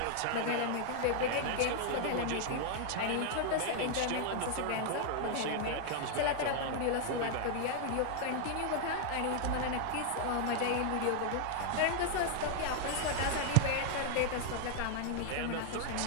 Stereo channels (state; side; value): different; both; correlation 0.00